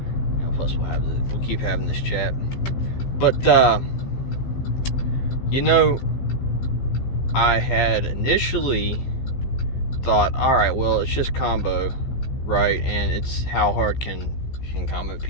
Plus we'll keep having this chat. But I had initially thought, all right, well, it's just combo, right? And it's how hard can combo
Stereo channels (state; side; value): late; right; 15 ms